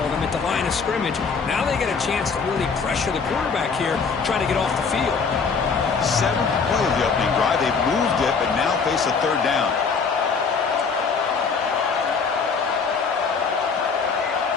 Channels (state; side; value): quieter; right; 5.3 dB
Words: them at the line of scrimmage. Now they get a chance to really pressure the quarterback here, trying to get off the field. 7th play of the opening drive. They've moved it, but now face a 3rd down.